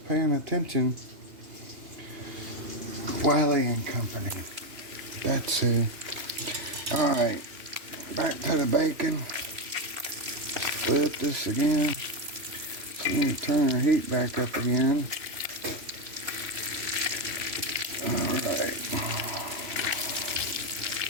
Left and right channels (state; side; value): late; left; 3.0 ms